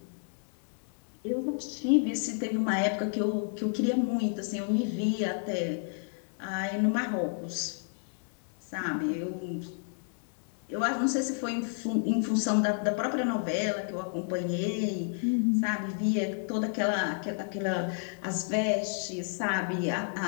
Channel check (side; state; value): right; silent; digital silence